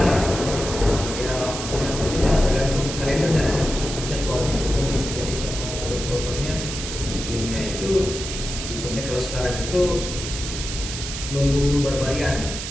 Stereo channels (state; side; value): noise; right; hiss, 7 dB below the sound